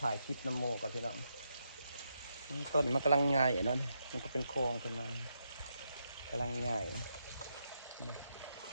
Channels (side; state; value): both; inverted; correlation -0.82